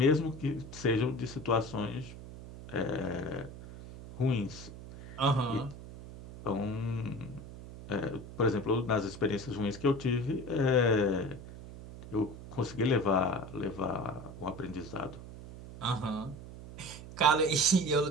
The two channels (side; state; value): right; noise; hum, 14 dB below the sound